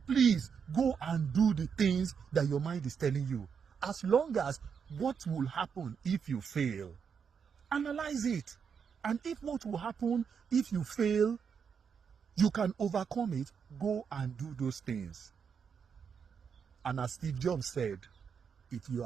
Please go and do the things that your mind is telling you. As long as what will happen if you fail, analyze it. And if what will happen if you fail, you can overcome it, go and do those things. And as Steve Jobs said, if you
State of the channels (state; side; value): quieter; left; 6.7 dB